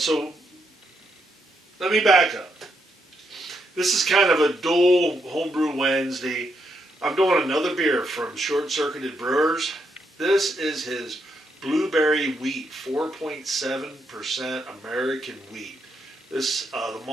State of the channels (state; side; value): normal; both; correlation 0.79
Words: let me back up. This is kind of a dual Homebrew Wednesday. I'm doing another beer from Circuited Brewers. This is his Blueberry Wheat, 4.7% American wheat. This the